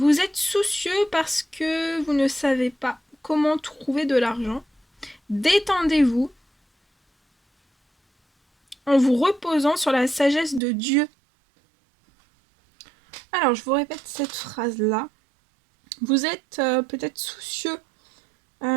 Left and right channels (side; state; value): left; drops out; at 10.6 s